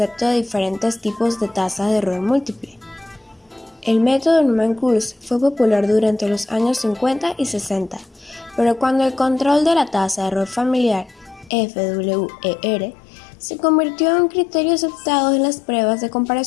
de diferentes tipos de tasa de error múltiple. El método Newman-Coulson fue popular durante los años 50 y 60, pero cuando el control de la tasa de error familiar, FWER, se convirtió en un criterio aceptado en las pruebas de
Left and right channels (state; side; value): drops out; right; at 11.5 s